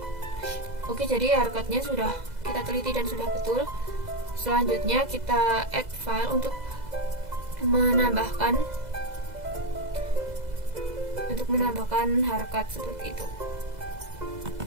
Oke, jadi harkatnya sudah kita teliti dan sudah betul. Selanjutnya kita add file untuk menambahkan harkat seperti itu.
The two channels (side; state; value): left; late; 2.0 ms